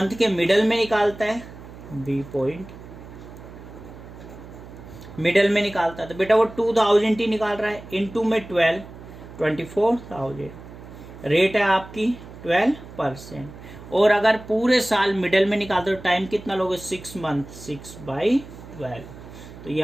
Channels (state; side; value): noise; right; hum, 16 dB below the sound